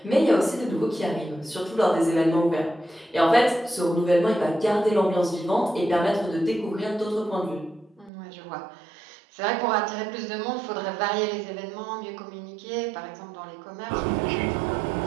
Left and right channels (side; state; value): left; drops out; at 8.1 s